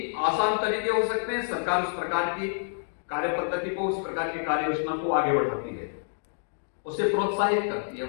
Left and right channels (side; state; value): right; silent; digital silence